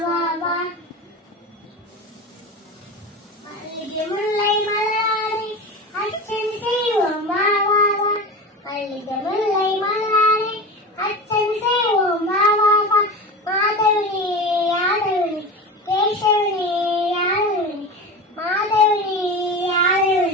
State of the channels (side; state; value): both; normal; correlation 0.27